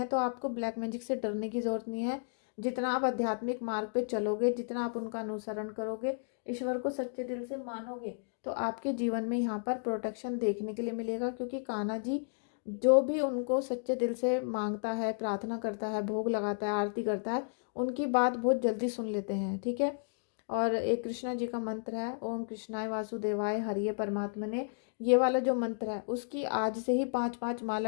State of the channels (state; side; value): silent; right; digital silence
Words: तो आपको ब्लैक मैजिक से डरने की जरूरत नहीं है। जितना आप आध्यात्मिक मार्ग पे चलोगे, जितना आप उनका अनुसरण करोगे, ईश्वर को सच्चे दिल से मानोगे, तो आपके जीवन में यहाँ पर प्रोटेक्शन देखने के लिए मिलेगा। क्योंकि कान्हा जी जो भी उनको सच्चे दिल से मांगता है, प्रार्थना करता है, भोग लगाता है, आरती करता है, उनकी बात बहुत जल्दी सुन लेते हैं, ठीक है। और एक कृष्णा जी का मंत्र है, ओम कृष्णाय वासुदेवाय हरिये परमात्मने, ये वाला जो मंत्र है उसकी आज से ही 5-5 माला